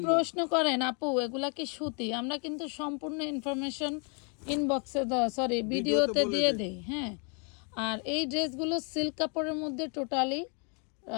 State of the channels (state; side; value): quieter; right; 37.4 dB